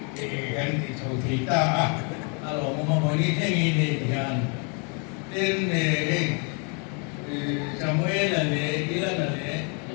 kan itu kita kalau mau ini dengan dan Samuel ada Ilan ada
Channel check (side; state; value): right; quieter; 36.7 dB